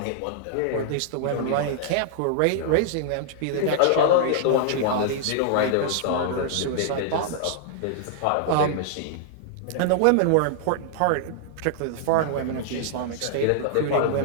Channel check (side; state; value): both; different; correlation -0.01